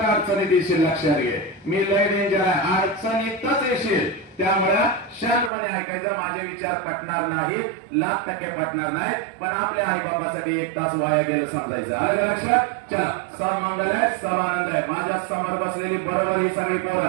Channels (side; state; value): left; drops out; at 5.5 s